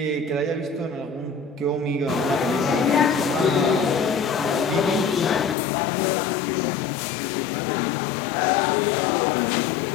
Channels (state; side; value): drops out; right; at 5.6 s